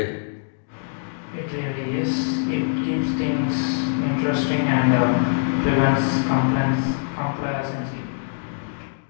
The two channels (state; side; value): silent; right; digital silence